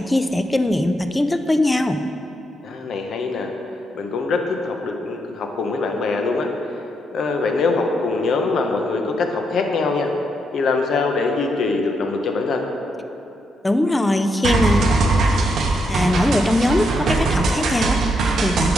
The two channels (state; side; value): normal; both; correlation 0.80